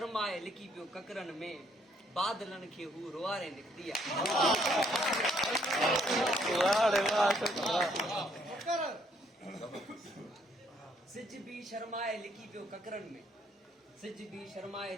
लिकी पियो ककरन में, बादलन खे हू रुआरे निकतिया। सिज भी शर्माए लिकी पियो ककरन में, सिज भी शर्माए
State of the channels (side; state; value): both; normal; correlation 0.68